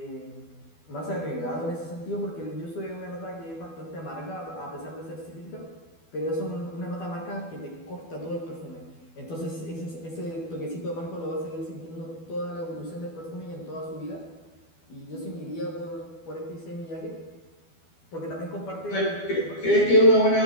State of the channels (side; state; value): right; late; 12 ms